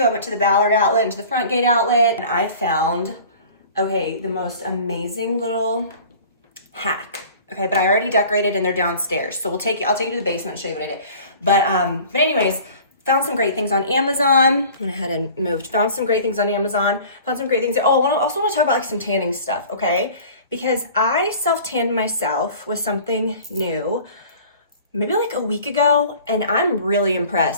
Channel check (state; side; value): inverted; both; correlation -0.45